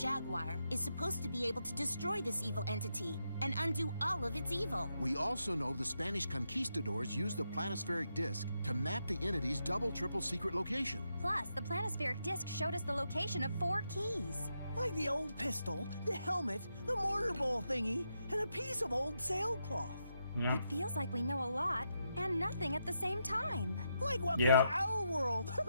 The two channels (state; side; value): inverted; both; correlation -0.83